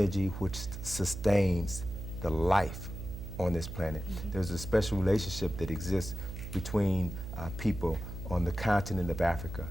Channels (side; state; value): right; noise; hum, 9 dB below the sound